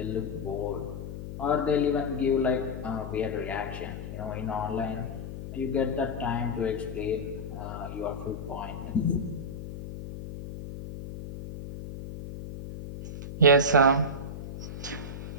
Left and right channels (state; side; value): noise; left; hum, 9 dB below the sound